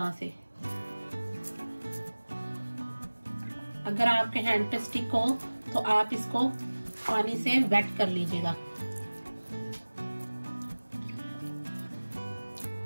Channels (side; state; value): both; inverted; correlation -1.00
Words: से। अगर आपके हैंड पे स्टिक हो तो आप इसको पानी से वेट कर लीजिएगा।